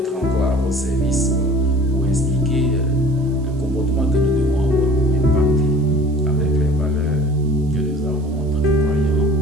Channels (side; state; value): right; noise; hiss, 30 dB below the sound